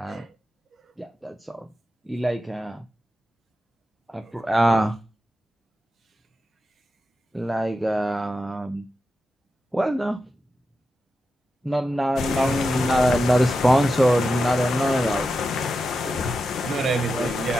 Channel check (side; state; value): both; normal; correlation 0.89